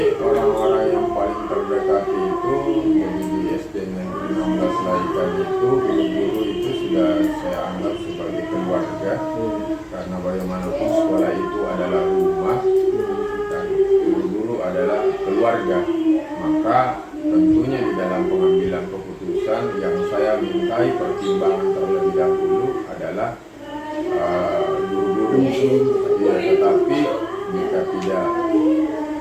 orang-orang yang paling terdekat itu jadi di SD Negeri 16 Laikan itu guru-guru itu sudah saya anggap sebagai keluarga, karena bagaimanapun sekolah itu adalah rumah dan guru-guru adalah keluarga. Maka tentunya di dalam pengambilan keputusan yang saya mintai pertimbangan terlebih dahulu adalah guru-guru. Ya, tetapi jika tidak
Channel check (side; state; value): both; identical; correlation 1.00